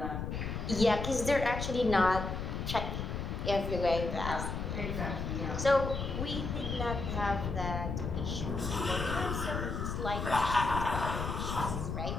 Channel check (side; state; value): left; noise; rumble, 3 dB below the sound